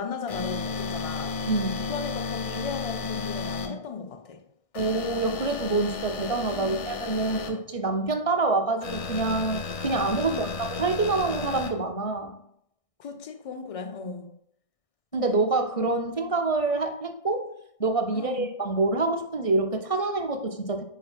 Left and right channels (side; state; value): right; late; 1.6 ms